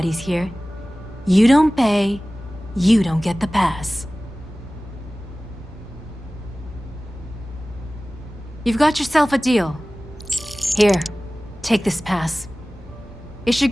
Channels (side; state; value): both; normal; correlation 0.97